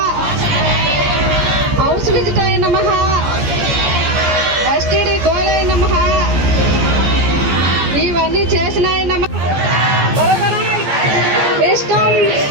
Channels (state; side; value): late; left; 14 ms